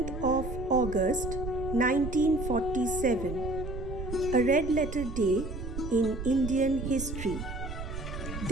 of August 1947, a red letter day in Indian history.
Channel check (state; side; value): noise; right; rumble, 7 dB below the sound